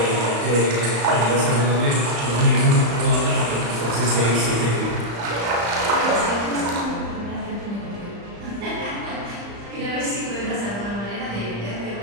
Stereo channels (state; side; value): late; left; 35 ms